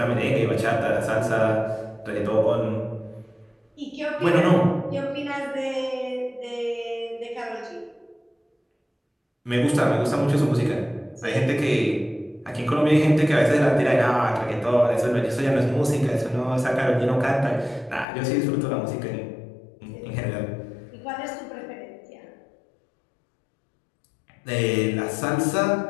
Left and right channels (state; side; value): drops out; right; at 18.1 s